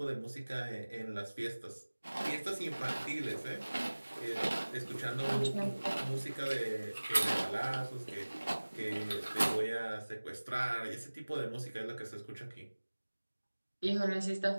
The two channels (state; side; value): inverted; both; correlation -1.00